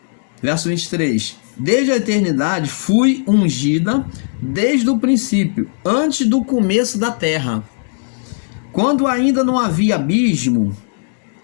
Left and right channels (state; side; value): silent; right; 68 dB below the other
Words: verso 23, desde a eternidade fui ungida, desde o princípio, antes do começo da terra. Quando ainda não havia abismo,